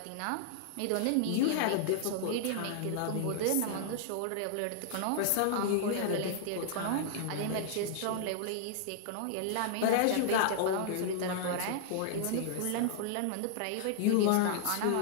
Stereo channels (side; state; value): both; different; correlation -0.01